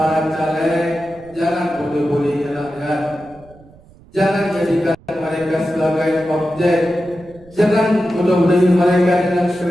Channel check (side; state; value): right; noise; rumble, 25 dB below the sound